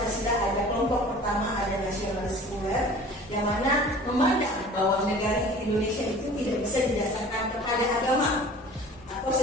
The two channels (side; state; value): both; normal; correlation 0.44